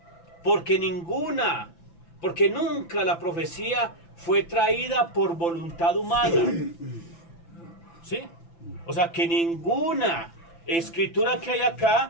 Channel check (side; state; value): right; late; 5.9 ms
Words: porque nunca la profecía fue traída por voluntad humana. ¿Sí? O sea, que ninguna escritura que hay